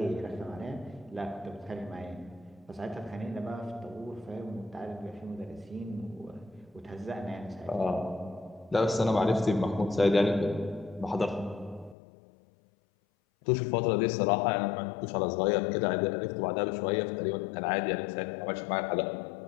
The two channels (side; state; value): right; drops out; at 12.0 s